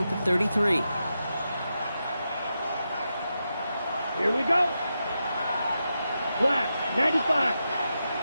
the 33. Here we go. Black, 95.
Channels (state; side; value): inverted; both; correlation -0.88